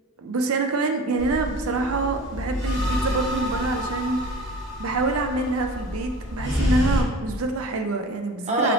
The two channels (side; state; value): both; normal; correlation 0.40